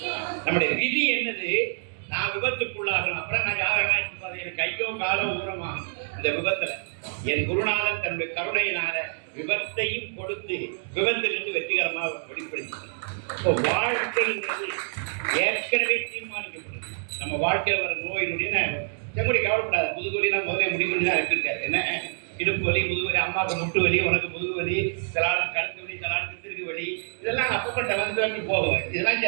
நம்முடைய விதி என்னது? நான் விபத்துக்குள்ளாகணும். அப்புறம் நான் யாரெல்லாம் எனக்கு கையோ காலோ ஊரமாகும் இந்த விபத்துல. என் குருநாதன் தன்னுடைய கருணையினால விபத்தையும் கொடுத்து விபத்திலிருந்து வெற்றிகரமாக வெளிப்படுத்தி வாழ்க்கைங்கிறது ஏற்கனவே தீர்மானிக்கப்படுது. நம்ம வாழ்க்கையில் வர நோயினுடைய செங்குடி கவலைப்படாது. முதுகுவலினா முதல்ல முடிவுன்னு தான் இருக்காரு. என்ன இடுப்பு வலி, முதுகுவலி, அம்மாவுக்கு முட்டு வலி, உனக்கு முதுகு வலி, சிலாளுக்கு கழுத்து வலி, சிலாளுக்கு திருகு வலி, இதெல்லாம் அப்பப்பட்ட வந்து போகும். இதெல்லாம்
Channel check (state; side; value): silent; left; digital silence